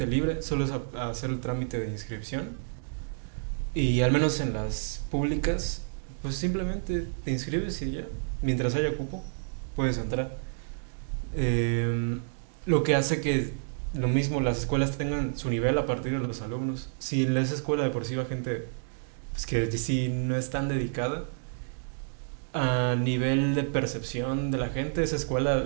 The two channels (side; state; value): left; silent; digital silence